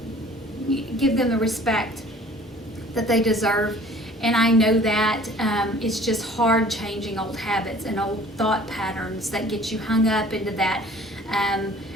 give them the respect that they deserve. And I know that it's just hard changing old habits and old thought patterns that get you hung up into that.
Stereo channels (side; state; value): both; normal; correlation 0.50